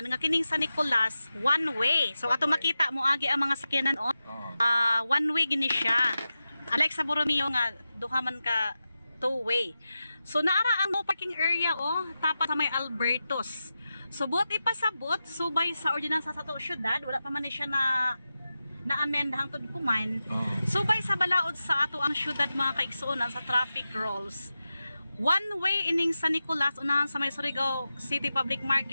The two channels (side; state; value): both; inverted; correlation -0.92